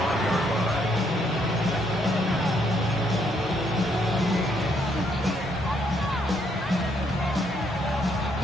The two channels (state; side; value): normal; both; correlation 0.72